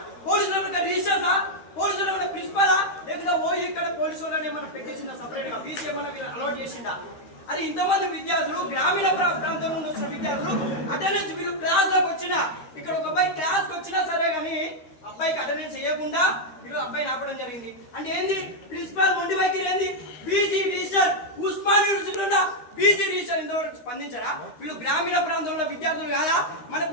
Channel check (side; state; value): right; late; 13 ms